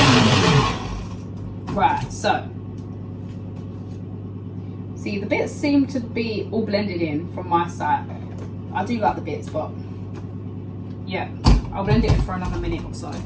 Right, so see, the bits seem to be all blended in from my side. I do like the bits, but yeah, I'll blend it in for another minute or so.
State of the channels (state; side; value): identical; both; correlation 1.00